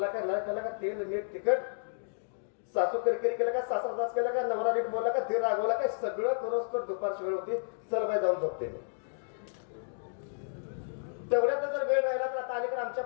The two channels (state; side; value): silent; right; digital silence